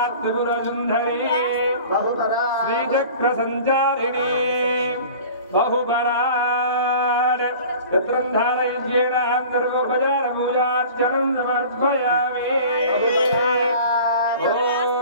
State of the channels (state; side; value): inverted; both; correlation -0.42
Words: त्रिपुरसुंदरी श्रीचक्र संचारिणी बहुपराड यत्रंधारय्येण सर्वोपचार पूजार्चनं समर्पयामि।